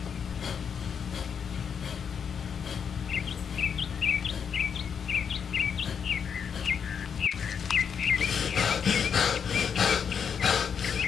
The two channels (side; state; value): right; quieter; 7.0 dB